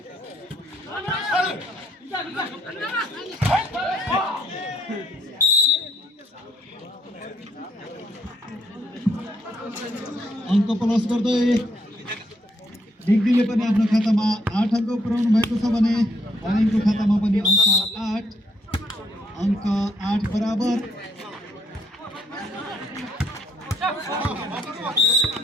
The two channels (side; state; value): both; normal; correlation 0.71